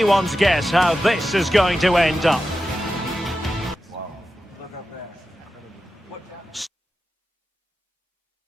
guess how this is going to end up.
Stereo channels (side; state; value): both; normal; correlation 0.92